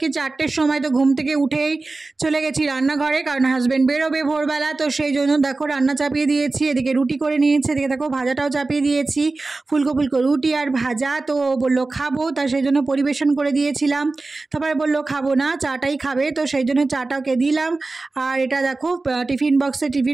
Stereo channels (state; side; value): quieter; left; 3.5 dB